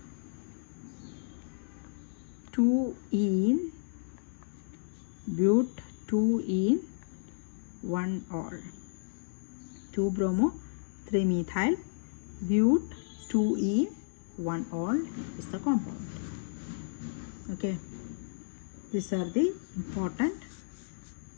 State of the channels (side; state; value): right; silent; digital silence